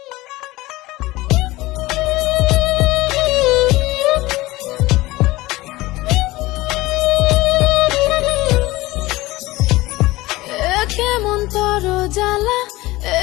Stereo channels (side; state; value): right; quieter; 19.4 dB